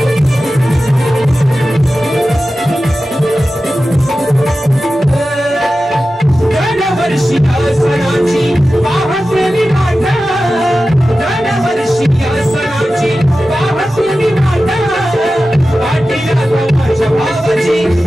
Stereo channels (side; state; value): both; normal; correlation 0.94